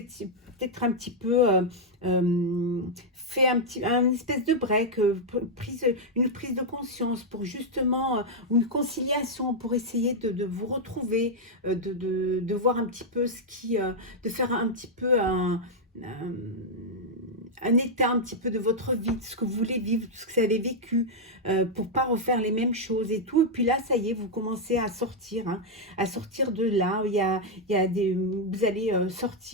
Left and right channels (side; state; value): both; normal; correlation -0.03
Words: peut-être un petit peu fait un espèce de break, une prise de conscience pour justement, une conciliation pour essayer de vous retrouver, de voir un petit peu de faire un petit peu un état un petit peu de votre vie, de ce que vous voulez vivre, de ce que vous avez vécu, pour pas refaire les mêmes choses et tout. Et puis là, ça y est, vous commencez à sortir, hein, à sortir de là. Il y a vous allez